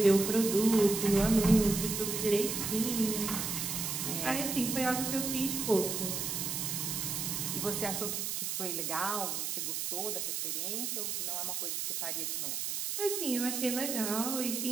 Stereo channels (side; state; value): right; noise; hiss, 2 dB below the sound